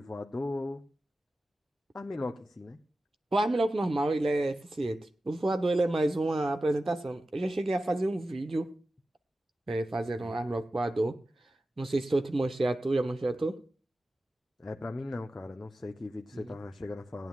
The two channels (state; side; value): normal; both; correlation 0.94